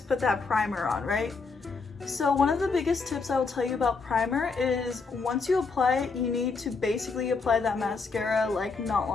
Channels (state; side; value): quieter; right; 4.5 dB